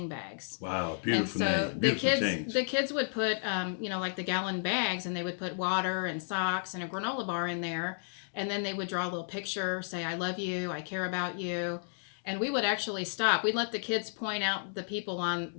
bags. Wow, beautiful And so name. Beautiful the kids would put, like the gallon bags, and they would put water and socks and a granola bar in there. And then they would draw a little picture, say, I love you, I care about you. And we would actually stop. We'd let the kids point out the people on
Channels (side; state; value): right; silent; digital silence